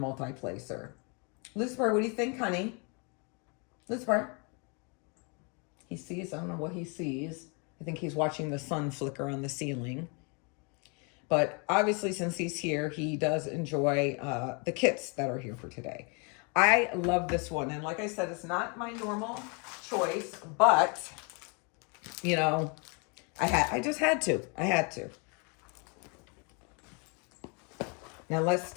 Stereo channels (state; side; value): quieter; right; 34.2 dB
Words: Lucifer, what do you think, honey? Lucifer? He sees, I don't know what he sees. I think he's watching the sun flicker on the ceiling. But obviously, since he's here, he does enjoy the kits that are here for today. I love this one. And like I said, it's not my normal choice, but, you know, I just had to. I had to. Now let's